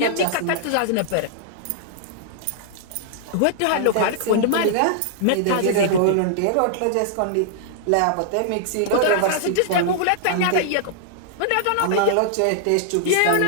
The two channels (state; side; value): different; both; correlation -0.01